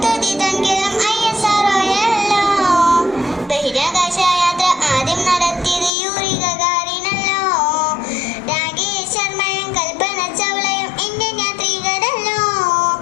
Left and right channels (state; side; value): drops out; right; at 5.9 s